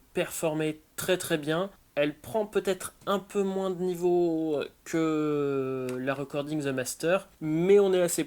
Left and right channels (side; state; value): both; identical; correlation 1.00